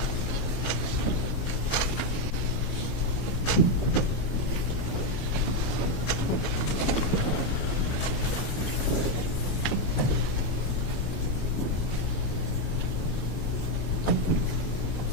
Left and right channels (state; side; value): late; right; 21 ms